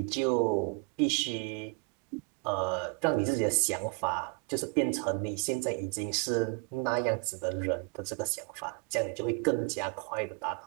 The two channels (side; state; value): left; quieter; 33.5 dB